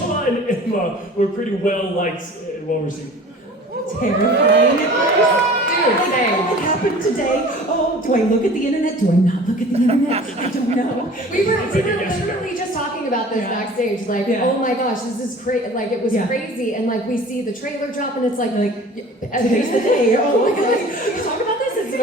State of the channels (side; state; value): both; normal; correlation 0.44